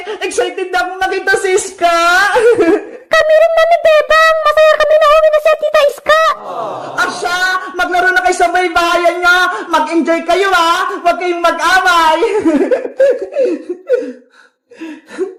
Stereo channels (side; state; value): both; identical; correlation 1.00